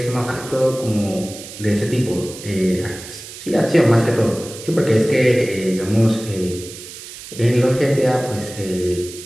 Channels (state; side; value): noise; right; hiss, 14 dB below the sound